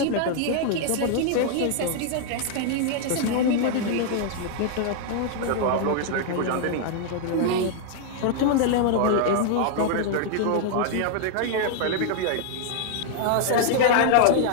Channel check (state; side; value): different; both; correlation -0.01